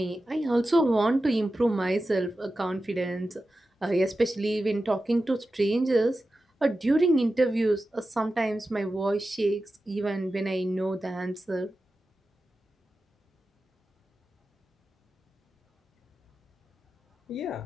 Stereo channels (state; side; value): normal; both; correlation 0.93